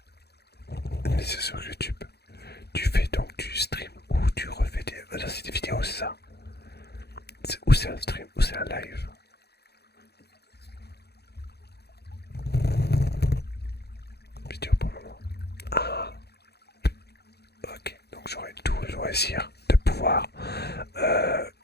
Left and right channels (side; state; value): right; late; 0.48 ms